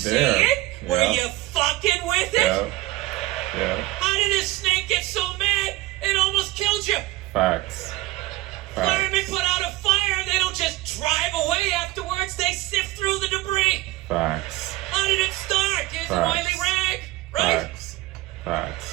there? it? Yeah. Were you fucking with it? Yeah. How did this snake get so mad it almost killed you? Facts. Firemen put out a fire, they don't just drive away afterwards, they sift through the debris. Facts. How did it start? Here's an oily rag, right?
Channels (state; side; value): quieter; left; 18.6 dB